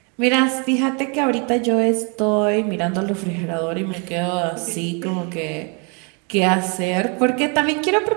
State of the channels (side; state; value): left; quieter; 34.9 dB